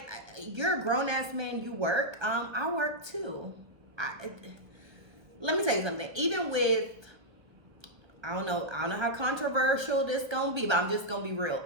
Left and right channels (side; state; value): left; late; 1.3 ms